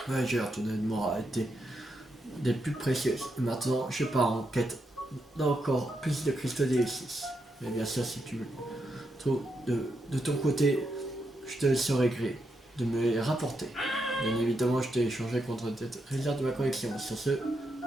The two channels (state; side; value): normal; both; correlation 0.83